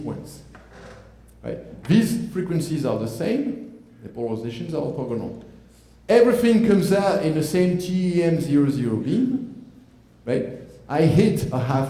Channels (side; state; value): both; identical; correlation 1.00